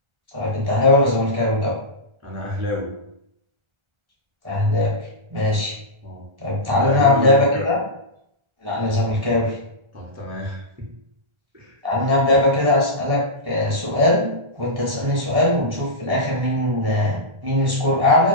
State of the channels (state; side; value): late; left; 1.3 ms